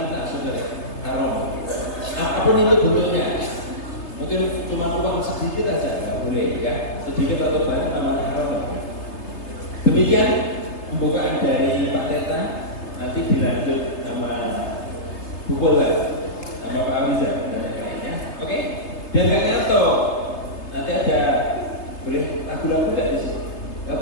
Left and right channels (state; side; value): late; right; 3.3 ms